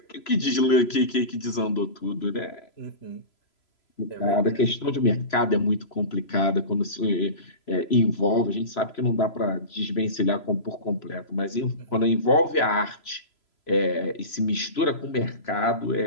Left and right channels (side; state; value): right; late; 3.0 ms